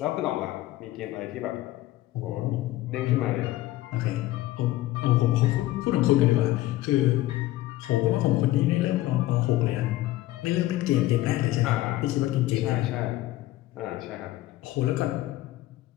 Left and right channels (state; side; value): quieter; right; 16.2 dB